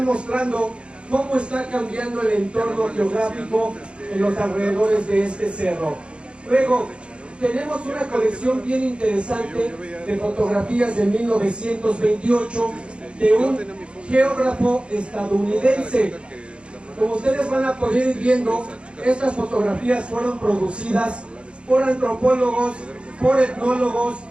mostrando cómo está cambiando el entorno geográfico en los alrededores de este cerro. Luego, tenemos una colección bien interesante de fotografías de 1928 de un geógrafo estadounidense. Como ustedes van a poder ir viendo, estas fotografías fueron producidas por antropólogos, por etnólogos,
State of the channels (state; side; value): late; left; 0.057 ms